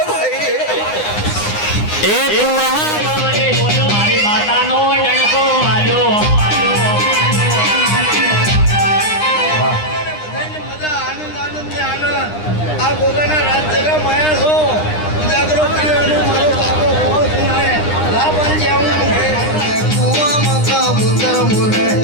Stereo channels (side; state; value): right; late; 9.8 ms